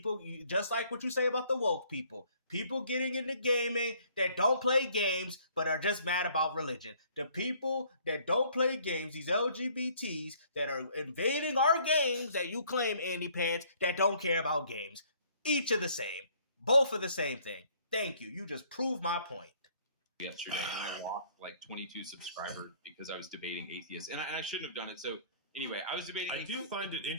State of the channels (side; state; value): both; inverted; correlation -0.60